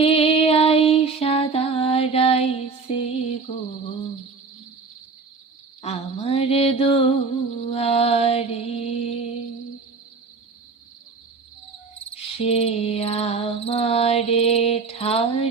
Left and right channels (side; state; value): left; quieter; 4.6 dB